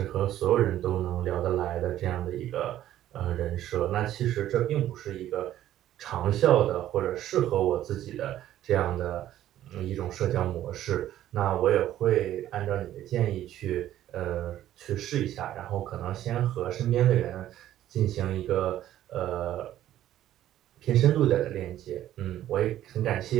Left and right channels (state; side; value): quieter; left; 12.7 dB